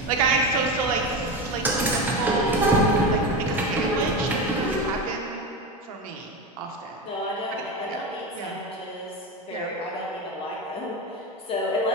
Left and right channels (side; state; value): both; normal; correlation 0.20